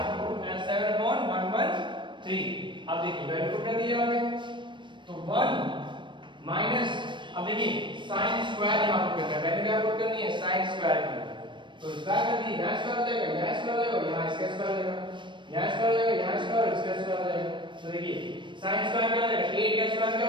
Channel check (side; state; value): left; late; 0.23 ms